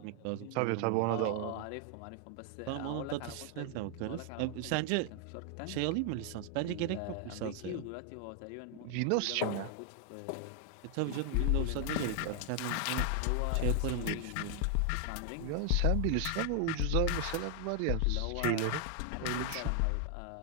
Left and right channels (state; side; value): different; both; correlation 0.00